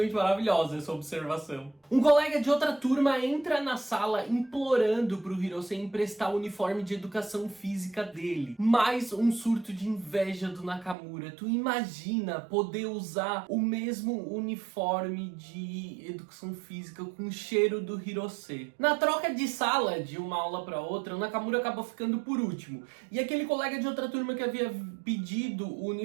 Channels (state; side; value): drops out; left; at 11.0 s